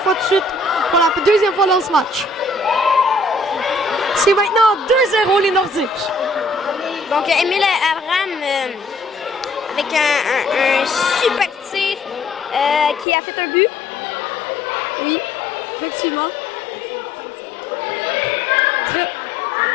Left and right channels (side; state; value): right; drops out; at 13.1 s